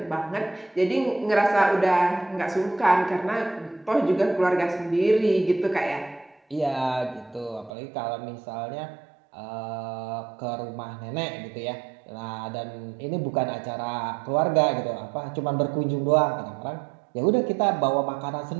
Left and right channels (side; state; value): left; drops out; at 7.7 s